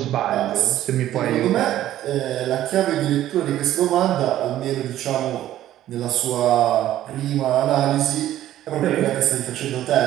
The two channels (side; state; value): left; quieter; 13.0 dB